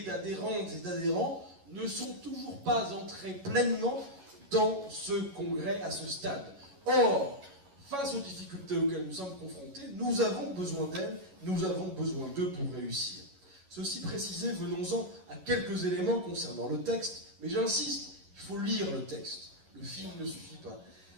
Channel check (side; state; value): left; late; 11 ms